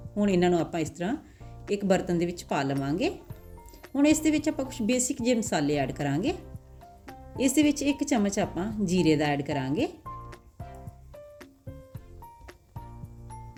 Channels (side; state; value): both; identical; correlation 1.00